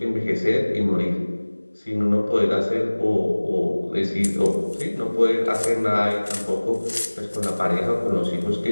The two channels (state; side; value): inverted; both; correlation -1.00